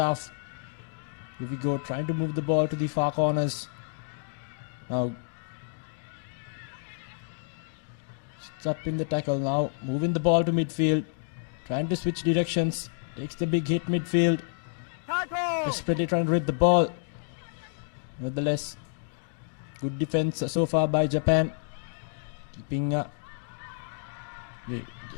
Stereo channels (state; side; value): silent; right; digital silence